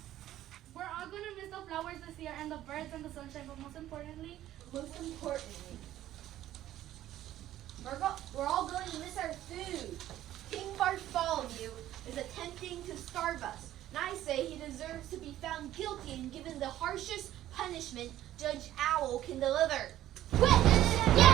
We're all going to miss the flowers this year and the birds and the sunshine, but most importantly, We're all going to miss our food. King Bartholomew is attempting to starve us, and I say he deserves to be found guilty and given the harshest punishment Judge Owl can deliver. I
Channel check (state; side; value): quieter; left; 13.3 dB